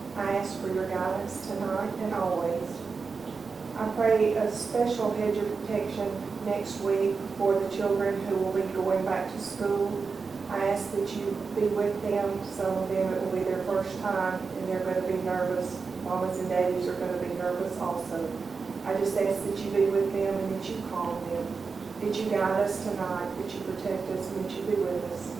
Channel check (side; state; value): left; quieter; 4.9 dB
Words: I ask for your guidance tonight and always. I pray a special hedge of protection next week for the children who will be going back to school. I ask that you be with them. Some of them, it will be their first time and they're going to be nervous. Mamas and daddies are going to be nervous also. I just ask that you be with them and that you calm them, that you guide us tonight, that you protect us, and that you be with us.